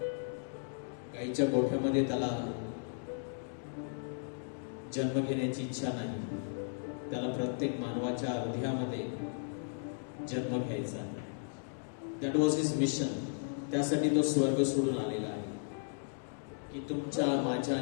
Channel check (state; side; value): silent; right; digital silence